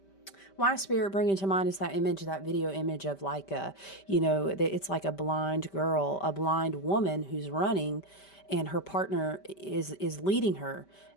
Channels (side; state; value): right; late; 5.1 ms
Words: My spirit bringing to mind is that image, that video image of like it's like a blind girl, a blind woman who's running and her partner is leading her.